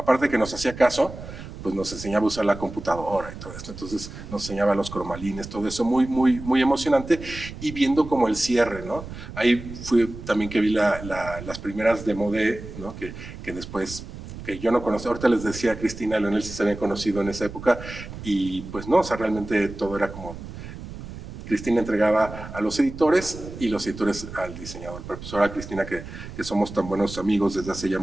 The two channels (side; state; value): right; noise; rumble, 12 dB below the sound